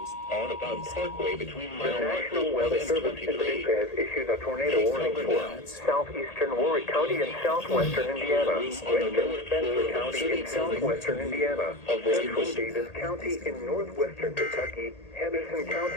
Audubon Parkway between mile markers 1 and 23. Has issued a tornado warning for southeastern Warwick County in southwestern Indiana, western Spencer County in southwestern Indiana, central Davis County in northwestern Kentucky, Henderson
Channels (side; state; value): right; late; 1.8 ms